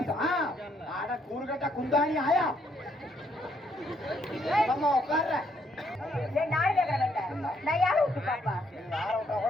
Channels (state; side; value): normal; both; correlation 0.71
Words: கூறுகட்ட குந்தாணி ஆயா உட்கார்ற நாடு கேட்கறேன் நான் யாரை விட்டு பாப்பா